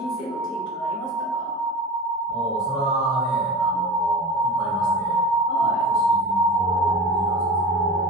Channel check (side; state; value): both; normal; correlation 0.31